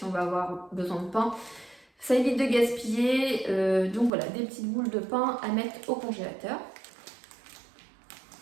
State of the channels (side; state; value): left; drops out; at 4.1 s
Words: on va avoir besoin de pain. Ça évite de gaspiller, donc voilà, des petites boules de pain à mettre au congélateur.